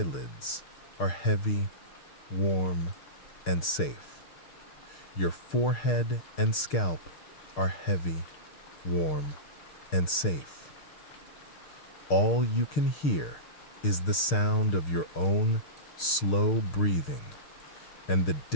are heavy, warm, and safe. Your forehead and scalp are heavy, warm, and safe. All you can hear is the sound of your own slow breathing and the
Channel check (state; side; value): late; right; 6.6 ms